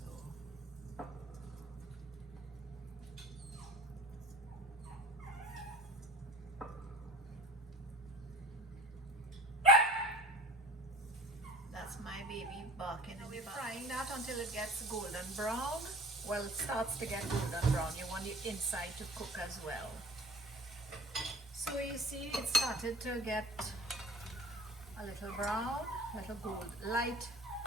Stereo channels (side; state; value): both; normal; correlation 0.42